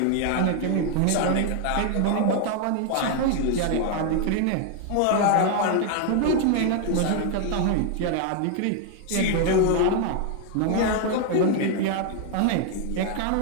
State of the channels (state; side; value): different; both; correlation 0.00